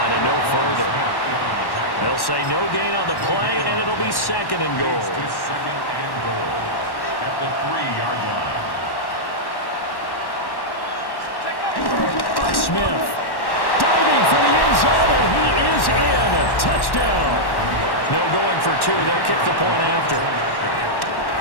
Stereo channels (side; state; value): right; late; 1.1 ms